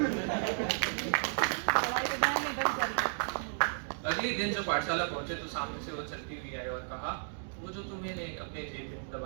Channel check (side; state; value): left; silent; digital silence